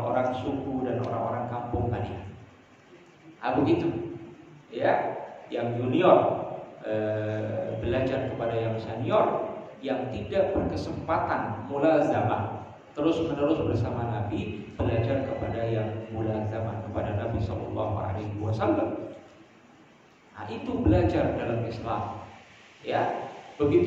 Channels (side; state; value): both; identical; correlation 1.00